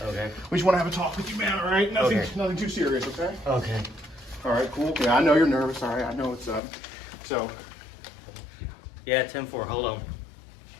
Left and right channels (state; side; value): drops out; right; at 6.6 s